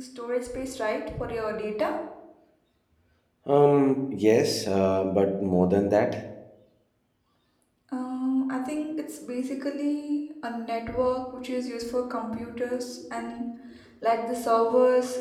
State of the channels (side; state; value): both; identical; correlation 1.00